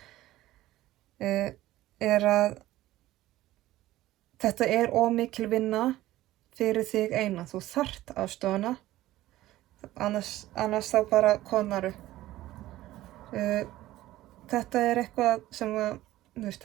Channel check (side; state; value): left; quieter; 15.7 dB